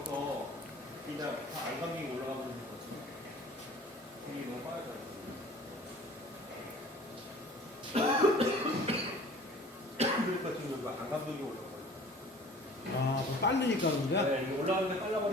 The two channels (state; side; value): normal; both; correlation 0.47